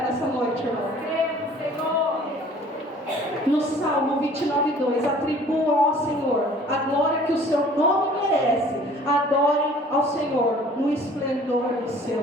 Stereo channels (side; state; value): both; normal; correlation 0.51